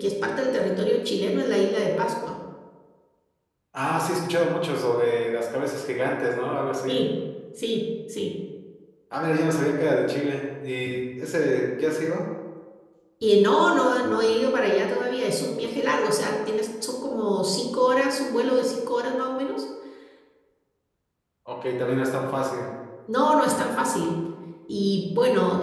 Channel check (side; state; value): both; identical; correlation 1.00